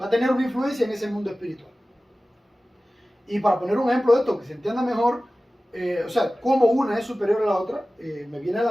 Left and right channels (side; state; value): both; normal; correlation 0.96